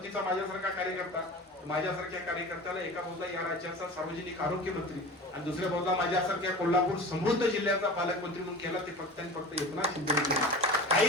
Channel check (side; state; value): both; normal; correlation 0.35